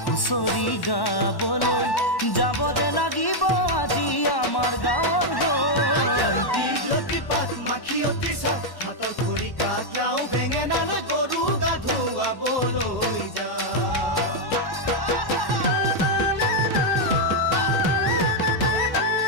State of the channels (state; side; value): late; right; 1.1 ms